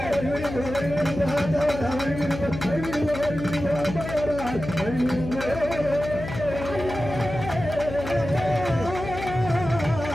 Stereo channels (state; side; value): noise; left; hum, 8 dB below the sound